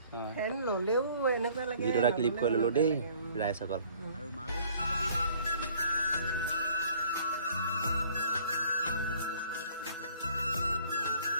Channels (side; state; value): both; inverted; correlation -0.56